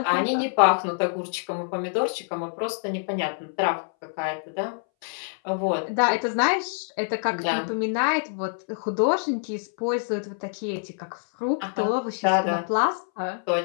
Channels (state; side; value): silent; right; 61 dB below the other